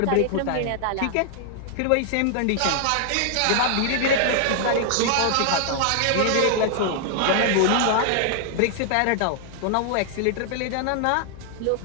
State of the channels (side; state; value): both; different; correlation 0.00